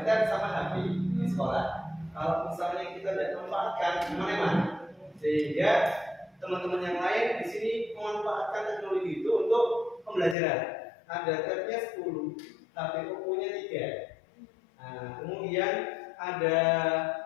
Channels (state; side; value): drops out; right; at 10.4 s